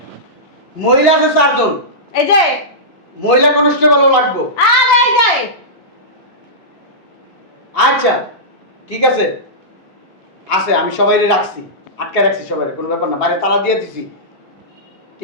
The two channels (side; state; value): both; normal; correlation -0.15